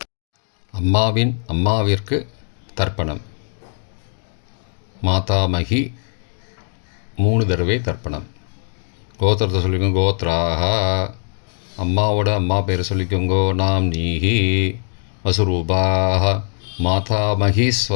அம்மாவிற்கு தர்ப்பணம். மாதாமகி 3 தடவை தர்ப்பணம். கோத்திரத்தை சொல்லிக்கோங்க. கோத்ராக. அம்மாவோட அம்மா பேர் சொல்லிக்கோங்கோ. நாம் நீஹி வசுரூபாக மாதாமகி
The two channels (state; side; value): silent; right; digital silence